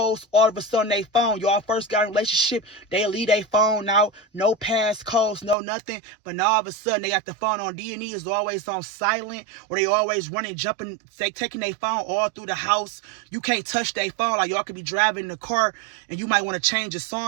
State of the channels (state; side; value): drops out; left; at 5.6 s